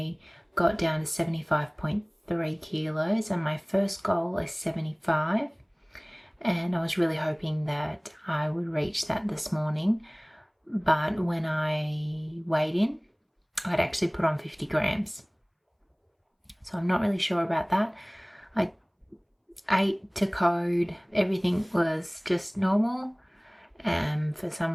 got down to 75.3 kilos and my first goal is 75. And I was really hoping that I would reach that this morning. But when I weighed in, I'd actually put on 50 grams. So I'm not really sure about that. I ate to code, everything was just normal. And for some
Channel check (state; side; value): identical; both; correlation 1.00